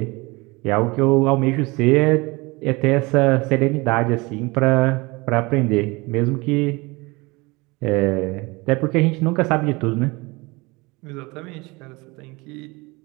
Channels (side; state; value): left; quieter; 24.6 dB